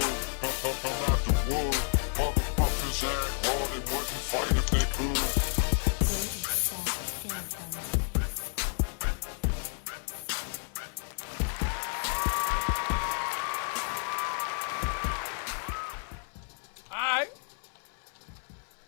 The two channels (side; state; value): right; silent; 57 dB below the other